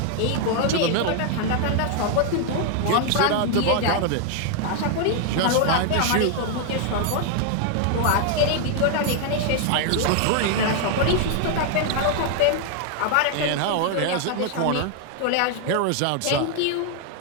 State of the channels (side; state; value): both; different; correlation 0.00